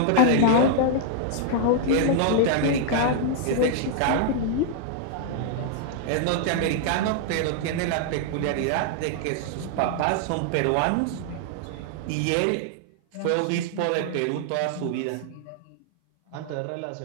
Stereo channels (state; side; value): different; both; correlation 0.00